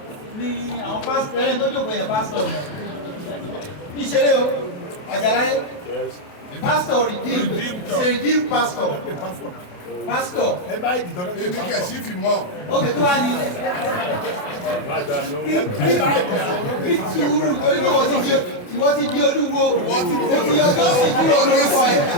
ní àwọn pásítọ̀ ẹni tó jókòó yẹn pásítọ̀ ní ìṣeré o Àjàláyé pásítọ̀ redeem pastor ẹ bá ìdìtọ́ lọ́wọ́ èmi kẹ̀ sí fi mọ́. ókè tó wá ní ìtúrú torí pé wọ́n ti di olúwo wọ́n ti yọjọ́ sí kúrò lórúkọ ẹ̀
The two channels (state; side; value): late; right; 28 ms